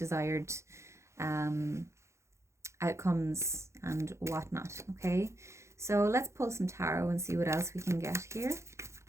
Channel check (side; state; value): left; late; 0.14 ms